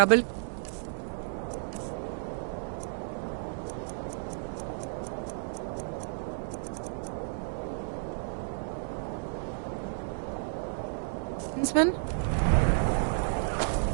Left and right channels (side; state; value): left; silent; digital silence